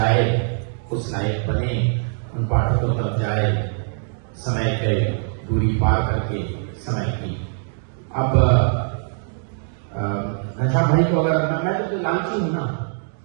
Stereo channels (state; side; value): silent; left; digital silence